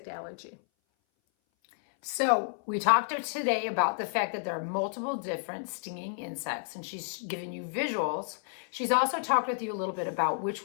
allergy. So we talked today about the fact that there are multiple different stinging insects, and she's given you visuals. She's also talked with you a little bit about which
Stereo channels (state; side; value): silent; right; 57 dB below the other